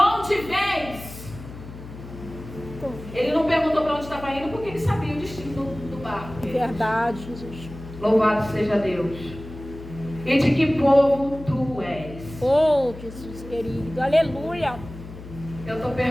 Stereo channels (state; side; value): noise; left; hum, 14 dB below the sound